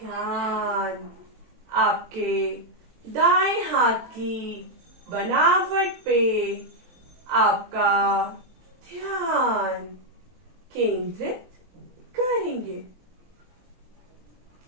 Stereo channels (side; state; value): left; late; 23 ms